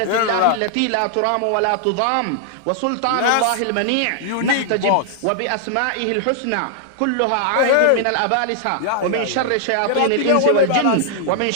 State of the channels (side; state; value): both; different; correlation -0.01